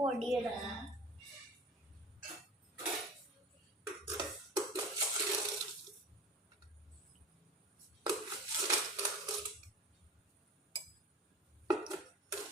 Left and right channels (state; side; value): normal; both; correlation 0.38